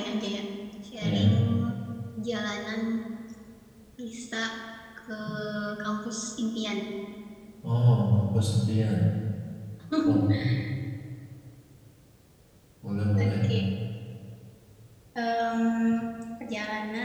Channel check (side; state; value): both; identical; correlation 1.00